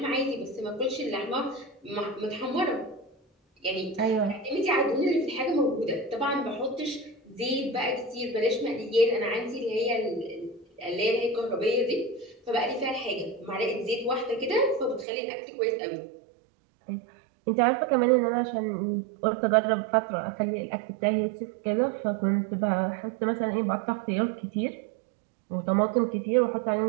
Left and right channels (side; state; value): left; drops out; at 15.1 s